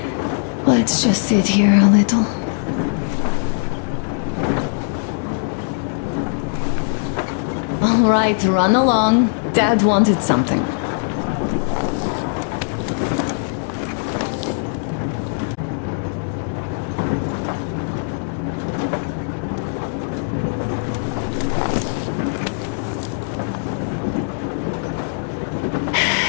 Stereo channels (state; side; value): silent; right; digital silence